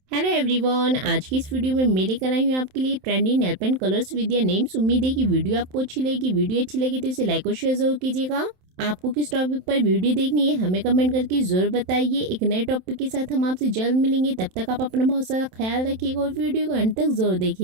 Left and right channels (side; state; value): left; late; 27 ms